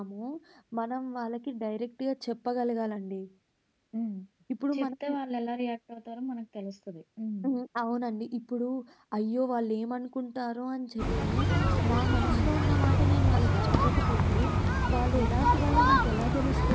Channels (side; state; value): both; identical; correlation 1.00